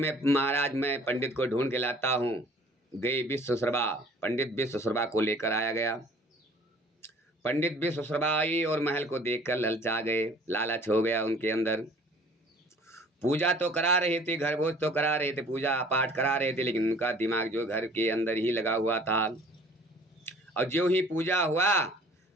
पंडित को ढूंढ के लाता हूँ। गए विश्वशर्मा, पंडित विश्वशर्मा को लेकर आया गया। पंडित विश्वशर्मा आई और महल को देखकर ललचा गए, लालच हो गया उनके अंदर। पूजा तो करा रहे थे, घर भोज तो करा रहे थे, पूजा पाठ करा रहे थे, लेकिन उनका दिमाग जो घर के अंदर ही लगा हुआ था। और जो ही पूजा हुआ,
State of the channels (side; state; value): both; normal; correlation 0.52